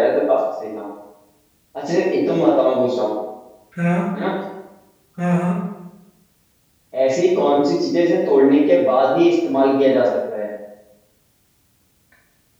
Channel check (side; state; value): both; identical; correlation 1.00